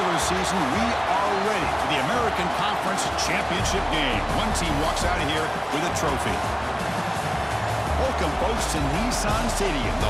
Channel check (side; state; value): both; identical; correlation 1.00